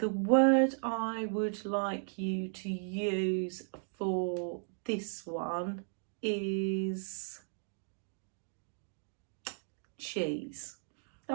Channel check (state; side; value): silent; left; digital silence